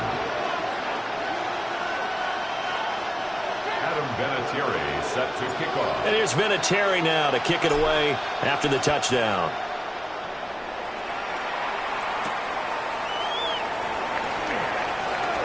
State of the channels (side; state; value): both; identical; correlation 1.00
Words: Adam Vinatieri set to kick off. And here's Vinatieri now to kick it away after the touchdown.